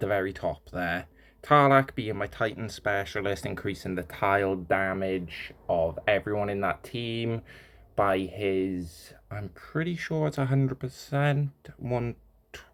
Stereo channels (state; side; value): identical; both; correlation 1.00